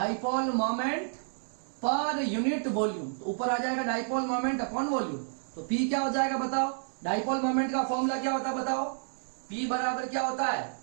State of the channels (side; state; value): left; silent; digital silence